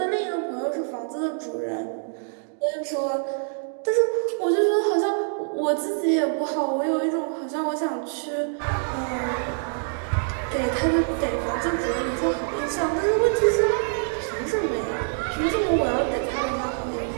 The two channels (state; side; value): silent; left; digital silence